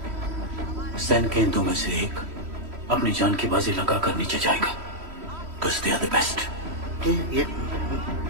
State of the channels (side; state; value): left; late; 3.1 ms